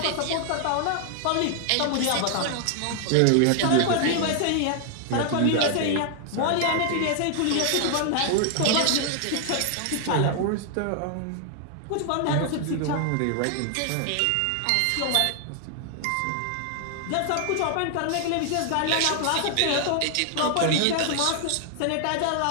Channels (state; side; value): different; both; correlation 0.00